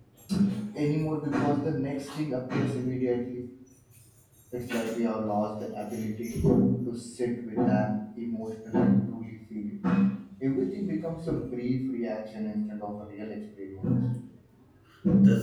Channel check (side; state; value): both; identical; correlation 1.00